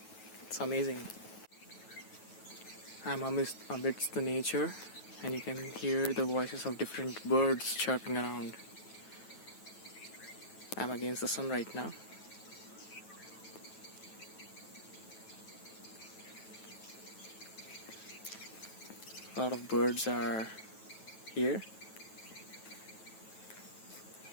It's amazing. I'm amidst the nature, and you can hear the voices of different birds chirping around. I'm against the sun right now. A lot of birds are here.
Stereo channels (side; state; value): right; late; 9.2 ms